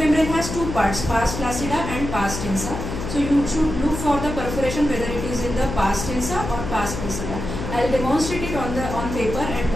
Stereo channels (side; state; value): left; noise; hum, 6 dB below the sound